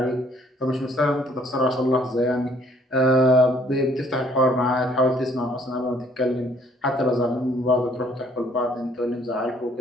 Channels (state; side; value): normal; both; correlation 0.62